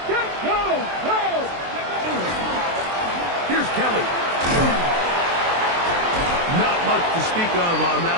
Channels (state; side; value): late; left; 23 ms